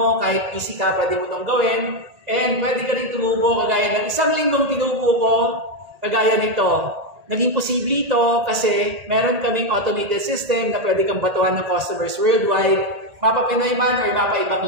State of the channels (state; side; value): late; left; 1.8 ms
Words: kahit busy ka, pwede mo itong gawin and pwede ka rin tumubo kagaya ng isang linggong tinubo ko kagaya nito. Naging posible ito kasi meron kaming automated system na pwede kang batuhan ng customers worldwide, mapa Pinoy man or mapa ibang